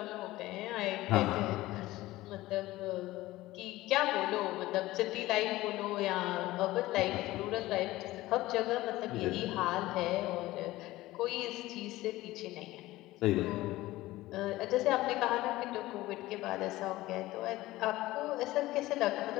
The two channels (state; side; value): quieter; right; 17.6 dB